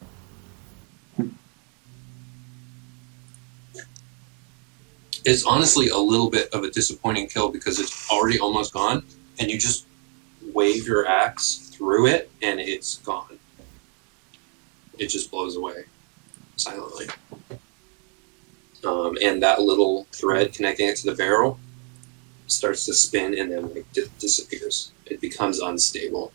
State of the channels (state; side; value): quieter; left; 34.4 dB